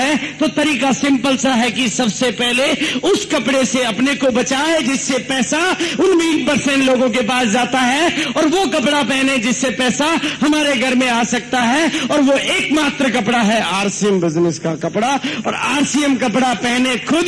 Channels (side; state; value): both; identical; correlation 1.00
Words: तो तरीका सिंपल सा है कि सबसे पहले उस कपड़े से अपने को बचाए जिससे पैसा उन 20% लोगों के पास जाता है, और वो कपड़ा पहने जिससे पैसा हमारे घर में आ सकता है। और वो एकमात्र कपड़ा है आरसीएम बिजनेस का कपड़ा। और आरसीएम कपड़ा पहने खुद